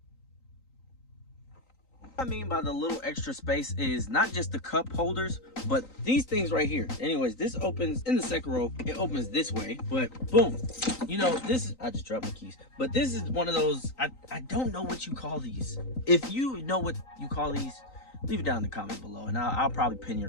What I mean by the little extra space is not just the cup holders, but these things right here. Anyways, this opens in the second row. It opens this way, but boom. You know, this is, I just dropped my keys, but this is one of those, I don't know what you call these. If you know what you call these, leave it down in the comment below, and I'll probably pin your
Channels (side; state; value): right; late; 3.9 ms